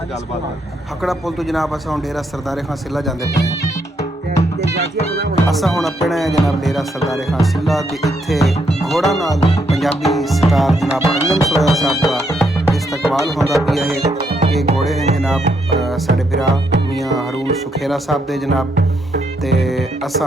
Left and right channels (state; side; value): normal; both; correlation 0.76